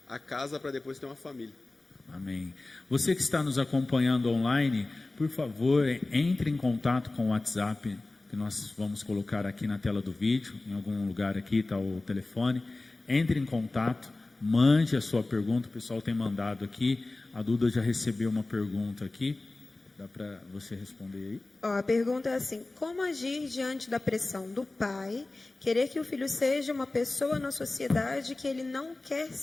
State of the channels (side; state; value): right; quieter; 3.1 dB